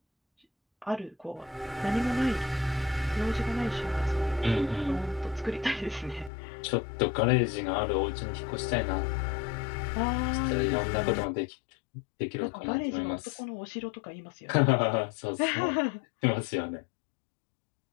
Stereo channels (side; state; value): right; drops out; at 6.3 s